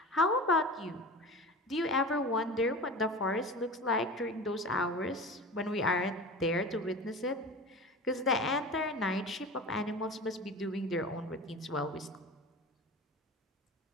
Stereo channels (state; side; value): normal; both; correlation 0.33